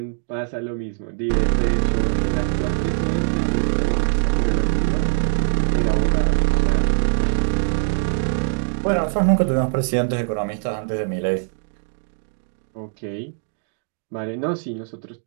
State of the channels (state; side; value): silent; left; digital silence